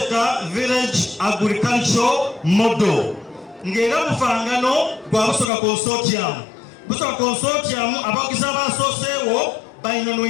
village agriculture model ng'era bufangano gwa Busoga consortium. Busoga consortium abagizi abasooseewo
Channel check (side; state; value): right; drops out; at 5.5 s